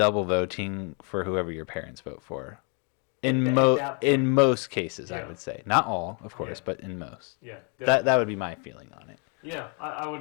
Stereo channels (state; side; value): quieter; right; 38.0 dB